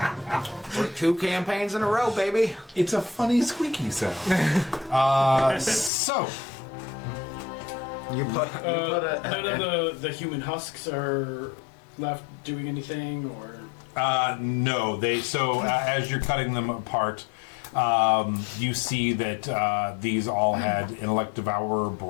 We're 2 campaigns in a row, baby. It's a funny squeaky sound. So You put None of the human husks are left doing anything, or no, they. So as you're cutting them apart, you see that these all had intellect devourer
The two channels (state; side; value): drops out; right; at 5.9 s